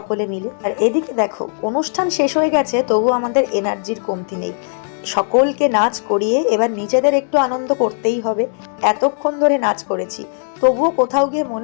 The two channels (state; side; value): silent; right; digital silence